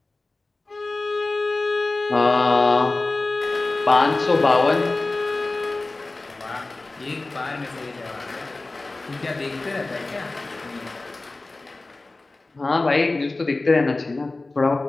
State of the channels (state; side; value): quieter; right; 3.2 dB